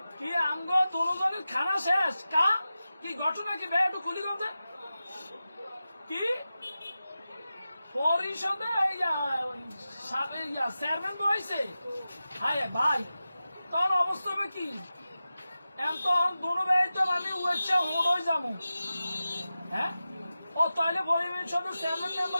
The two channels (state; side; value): inverted; both; correlation -0.94